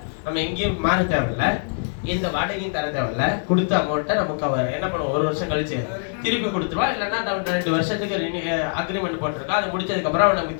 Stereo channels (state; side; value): silent; right; digital silence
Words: நம்ம எங்கேயும் மாற தேவையில்ல, இந்த வாடகையும் தர தேவையில்ல, கொடுத்த அமௌண்ட்டை நமக்கு அவர் என்ன பண்ணுவோம், 1 வருஷம் கழிச்சு திருப்பி கொடுத்துருவா. இல்லைன்னா 2 வருஷத்துக்கு அக்ரிமெண்ட் போட்டிருக்கா, அது முடிச்சதுக்கு அப்புறம் அவன்